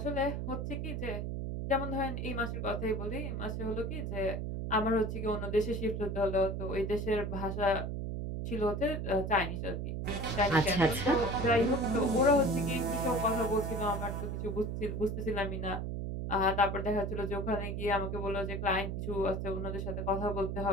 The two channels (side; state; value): right; noise; hum, 3 dB below the sound